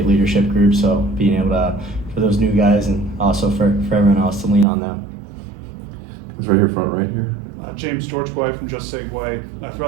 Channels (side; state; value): left; drops out; at 4.7 s